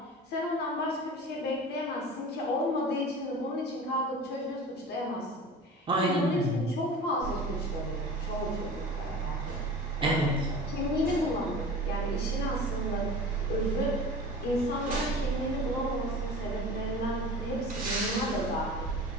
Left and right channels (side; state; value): both; normal; correlation 0.37